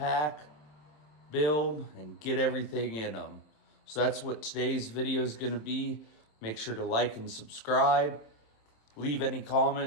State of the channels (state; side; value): late; right; 27 ms